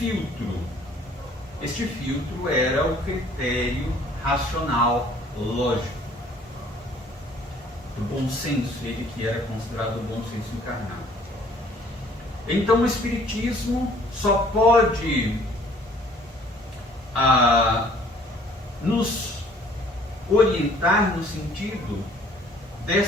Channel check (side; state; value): both; normal; correlation 0.57